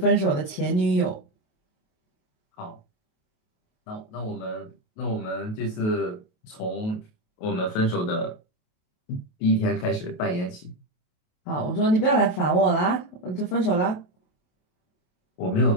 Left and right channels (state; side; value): late; right; 28 ms